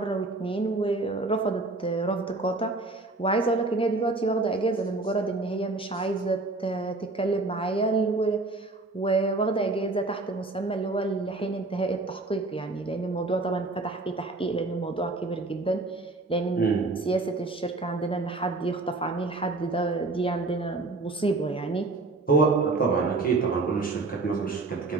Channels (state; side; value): quieter; left; 3.3 dB